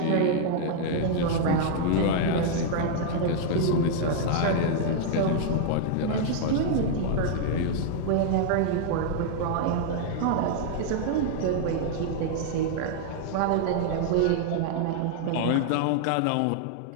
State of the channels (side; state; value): both; different; correlation 0.00